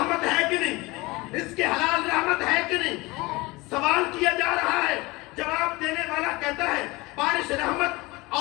ہے کہ نہیں؟ رزق حلال رحمت ہے کہ نہیں؟ سوال کیا جا رہا ہے، جواب دینے والا کہتا ہے بارش رحمت،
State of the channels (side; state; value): right; quieter; 22.7 dB